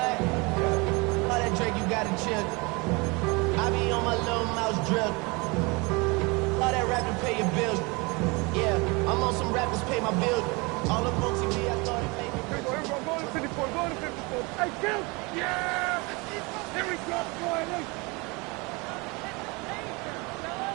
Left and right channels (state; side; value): quieter; left; 27.4 dB